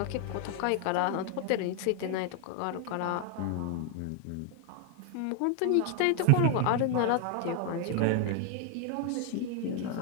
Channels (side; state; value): both; different; correlation 0.00